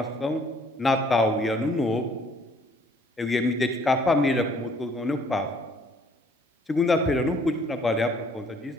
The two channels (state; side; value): normal; both; correlation 0.61